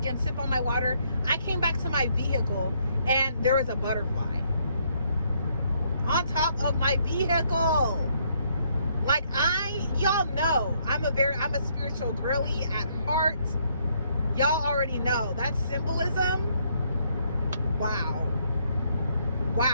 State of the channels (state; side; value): inverted; both; correlation -0.71